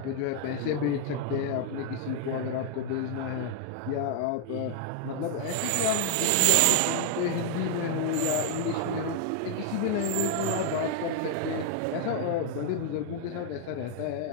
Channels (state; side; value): different; both; correlation 0.00